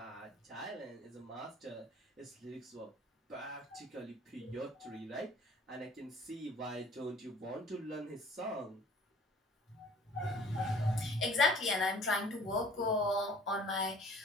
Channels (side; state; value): both; normal; correlation 0.52